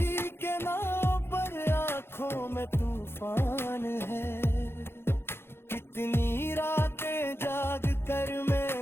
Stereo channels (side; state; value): right; late; 0.11 ms